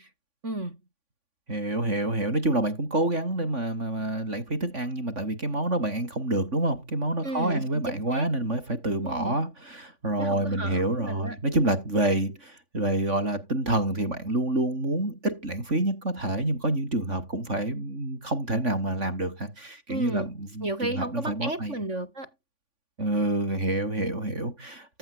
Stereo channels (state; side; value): late; left; 3.5 ms